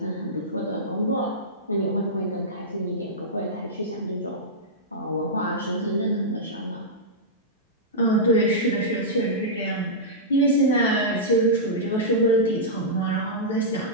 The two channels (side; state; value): both; normal; correlation -0.12